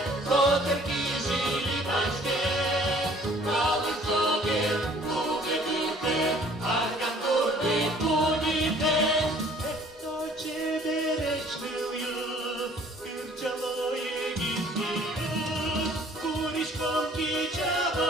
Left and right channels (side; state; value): both; normal; correlation 0.55